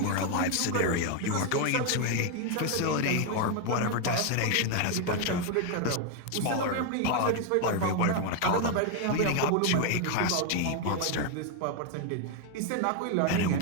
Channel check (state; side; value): different; both; correlation 0.01